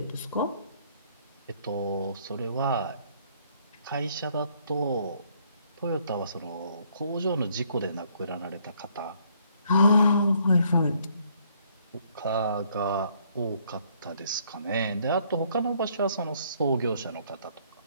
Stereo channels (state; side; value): inverted; both; correlation -0.66